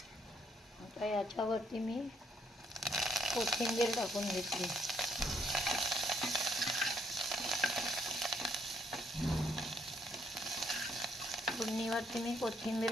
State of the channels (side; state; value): both; normal; correlation 0.70